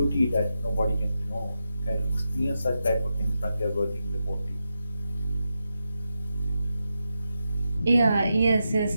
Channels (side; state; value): both; inverted; correlation -0.87